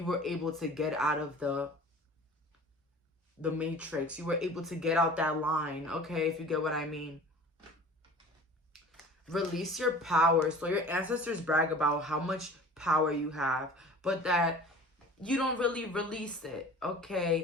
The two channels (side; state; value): both; normal; correlation 0.43